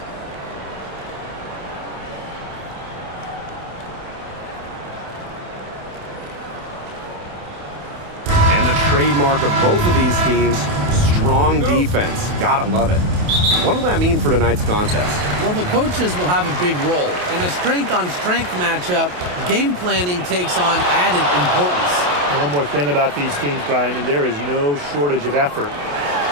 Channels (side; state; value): left; late; 28 ms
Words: Trademark of both of these teams, strong defense. Gotta love it. What will that mean for tonight's contest? Well, the coaches will have a big role. In a strength-on-strength matchup, game planning takes on added importance. And one more thing about these teams, Brian. I mean, there is no shortage of effort.